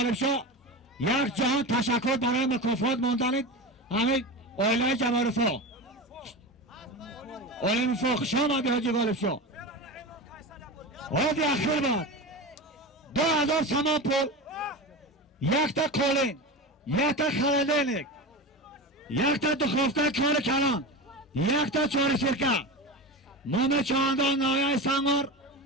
شاه یک جهان تشکر برای مکافات موندنید همین اویلای جبارفو اویلای مفاق شما دی حاجی غالب شاه حاضی اخیر باد 2000 سامان پول یک تا کولین یک تا خلالینlik یک تا دخوفته کار کلان یک تا چوری سیرکه مام چاندان نایه سنگور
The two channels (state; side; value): normal; both; correlation 0.25